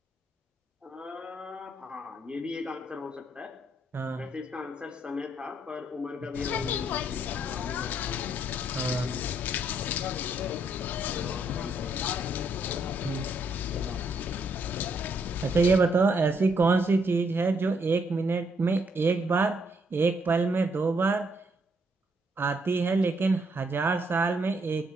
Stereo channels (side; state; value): both; normal; correlation 0.72